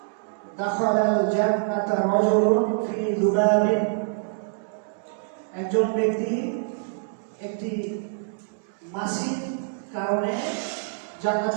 দাখালাল জান্নাতা রাজুলুন ফি যুবাবিন, একজন ব্যক্তি একটি মাছির কারণে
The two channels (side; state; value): left; silent; digital silence